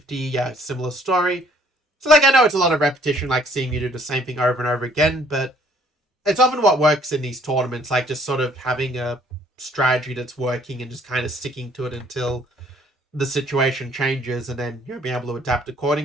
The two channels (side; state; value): both; normal; correlation 0.61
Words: yeah, similar story. So, like, I know it's a lot of repetition, like seeing you do the same thing over and over again, but it's often what works in these tournaments, like just sort of having a strategy that's working and just kind of sticking to it until the situation changes and then, you know, being able to adapt